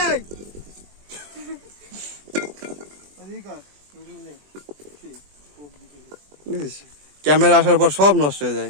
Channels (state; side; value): late; left; 20 ms